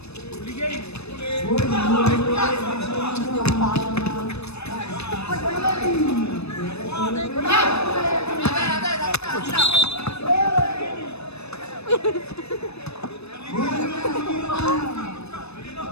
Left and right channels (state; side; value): late; right; 0.79 ms